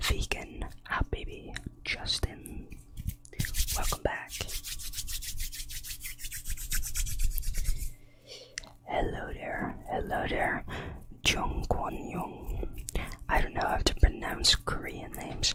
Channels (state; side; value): identical; both; correlation 1.00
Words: Habibi Justin. Welcome back. Hello there. Jung Kwon Young. I don't know how to pronounce Korean names.